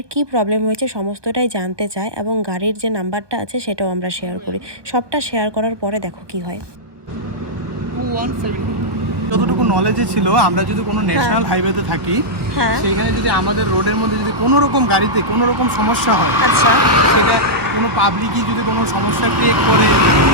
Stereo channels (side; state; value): left; late; 1.2 ms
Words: কি প্রবলেম হয়েছে সমস্তটাই জানতে চায়, এবং গাড়ির যে নাম্বারটা আছে সেটাও আমরা শেয়ার করি। সবটা শেয়ার করার পরে দেখো কি হয়। যতটুকু নলেজে ছিল, আমরা যদি কোনো ন্যাশনাল হাইওয়েতে থাকি, সেইখানে যদি আমাদের রোডের মধ্যে যদি কোনো রকম গাড়িতে কোনো রকম সমস্যা হয়, আচ্ছা, সেটা কোনো পাবলিকই যদি কোনো সমস্যা ক্রিয়েট করে,